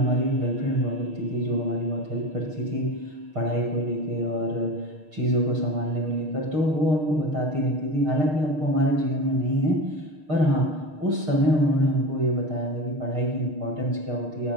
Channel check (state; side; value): late; left; 6.5 ms